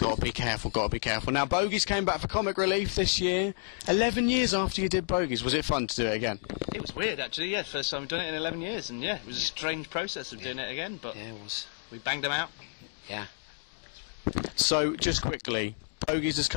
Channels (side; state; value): right; silent; digital silence